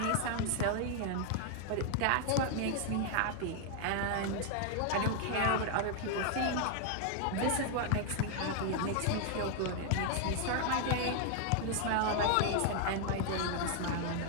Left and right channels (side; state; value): both; different; correlation 0.00